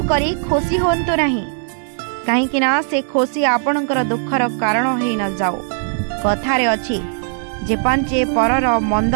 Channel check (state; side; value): silent; left; digital silence